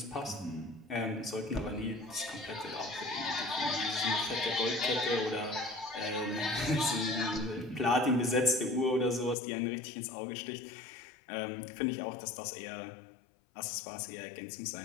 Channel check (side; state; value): right; drops out; at 9.3 s